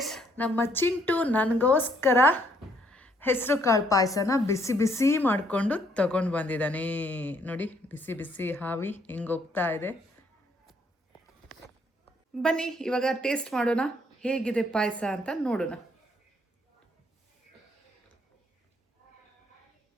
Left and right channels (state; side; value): normal; both; correlation 0.68